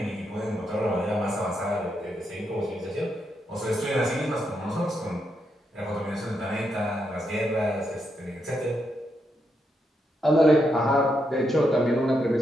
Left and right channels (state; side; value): normal; both; correlation 0.81